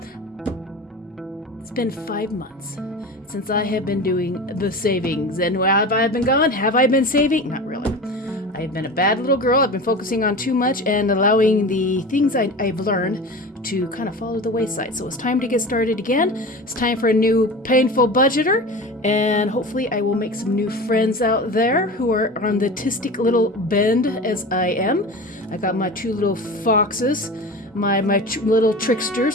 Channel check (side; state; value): both; normal; correlation 0.32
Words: it's been 5 months since I have been doing the savings. And where have I been gone? Have I been saving? Not really. I've been a bad little girl. I've been focusing on too much and allowing the things I've learned to kind of fall to the wayside. So it's time to get started again. It's time for a new painful budgeter, and hopefully I will make some new friends out there who are on the artistic little bend as I am. I got my 2 little foxes, my little